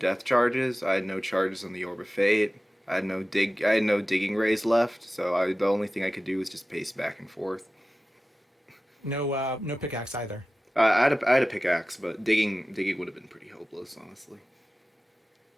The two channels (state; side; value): normal; both; correlation 0.96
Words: charges. I had no charges on the Orb of Fate. I had no digging rays left. So the only thing I could do was just pace back and forth. No pickaxe either. I had a pickaxe, but digging would have been pretty hopeless, honestly.